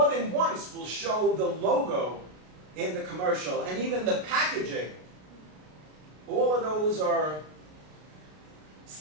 than once will show the logo in the commercial and even the packaging. All of those are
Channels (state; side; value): late; left; 33 ms